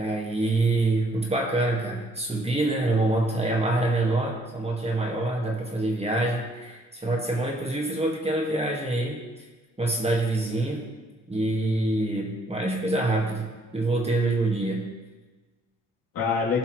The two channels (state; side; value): normal; both; correlation 0.66